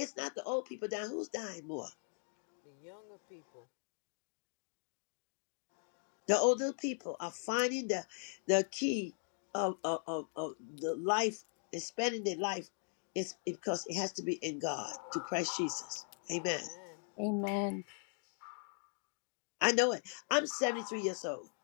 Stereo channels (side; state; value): right; silent; 52 dB below the other